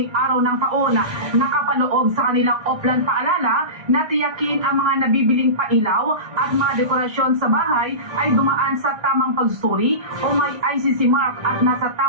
araw ng taon. Nakapaloob sa kanilang offline paalala na tiyakin ang mga nabibiling pailaw at mga dekorasyon sa bahay ay dumaan sa tamang pagsusuri o may ICC mark at nasa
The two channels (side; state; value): left; late; 1.6 ms